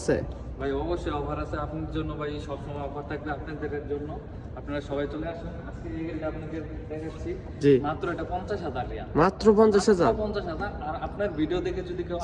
ভাই অবশ্যই অফার আছে আপনার জন্য ভাই, সবসময় অফার থাকবে আপনাদের জন্য। আপনারা সবাই চলে আসুন। আজকে এই গাড়িটা আপনাদের দেখাচ্ছি। জি, মাত্র এটা 50,000 রিয়াল। মাত্র 50,000। 50,000। আর আপনার ভিডিও দেখে যদি কেউ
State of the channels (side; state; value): both; identical; correlation 1.00